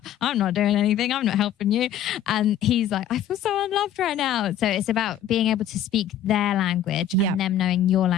I'm not doing anything, I'm not helping you. And he's like, I feel so unloved right now. So it's about being able to speak their language and them knowing your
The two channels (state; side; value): quieter; right; 9.4 dB